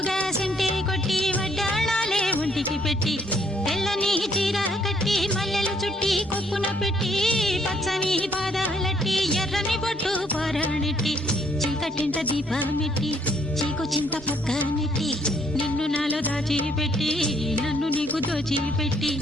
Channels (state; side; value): normal; both; correlation 0.68